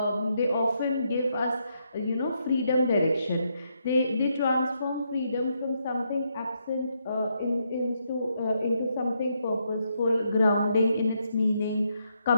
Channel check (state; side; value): inverted; both; correlation -0.78